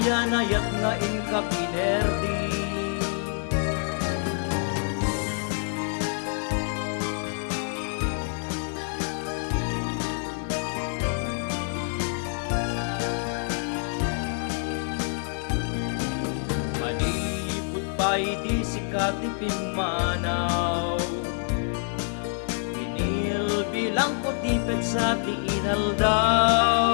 na inkapinerdi. Malipot pa'y di sikat itimanaw, sa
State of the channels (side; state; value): right; silent; 59 dB below the other